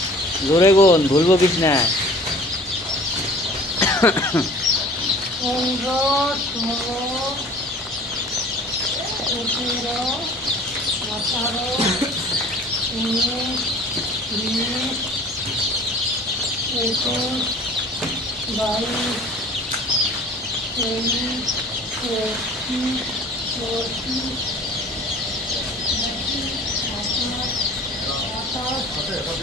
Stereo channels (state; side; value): normal; both; correlation 0.47